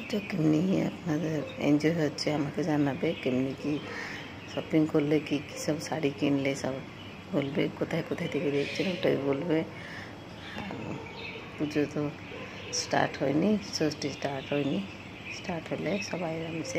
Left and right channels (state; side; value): identical; both; correlation 1.00